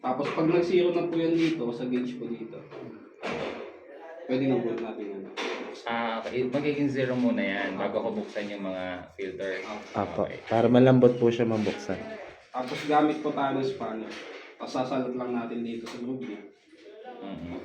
Tapos pag nag-zero na po yan dito, sa gauge po dito, pwede na po natin yan. Okay. Magiging zero muna yan bago ko buksan yung mga filter. Apo. Para malambot po siya mabuksan. Tapos gamit po tayo ng spanner. Tapos sasalot lang natin dito sa loob niya.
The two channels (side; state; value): both; identical; correlation 1.00